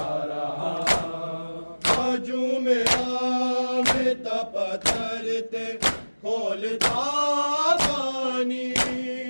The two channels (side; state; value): both; inverted; correlation -1.00